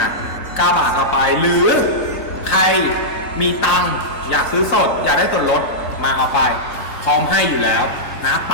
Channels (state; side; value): late; right; 4.0 ms